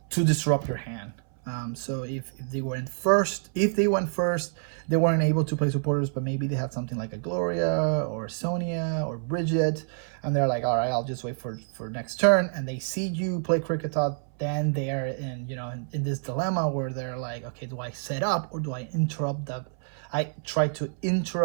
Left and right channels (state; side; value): silent; left; 60 dB below the other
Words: to disrupt your hand. So if they went first, they weren't able to play supporters, but maybe they had something like a Gloria or Sonia or Bridget, and they're like, all right, I'll just wait for next turn, and they see you play Cricketot, then they're in this dilemma where they're like, okay, do I set up or do I interrupt that? I try to